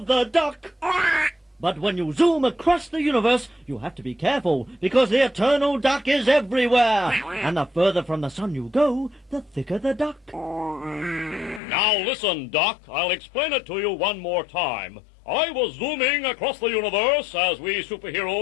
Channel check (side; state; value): right; drops out; at 11.6 s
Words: the duck. But when you zoom across the universe, you have to be careful because the eternal duck is everywhere. And the further from the sun you go, the thicker the duck. Now listen, Doc. I'll explain it to you one more time. I was zooming across the universe, as we